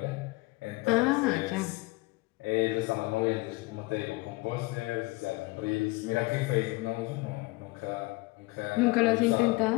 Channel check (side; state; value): right; quieter; 22.9 dB